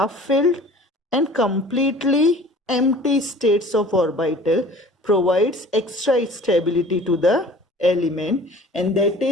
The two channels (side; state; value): both; normal; correlation 0.47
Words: filled and completely empty states of orbital provides extra stability to the element, and that